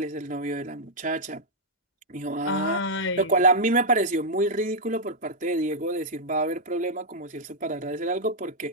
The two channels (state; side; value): normal; both; correlation -0.04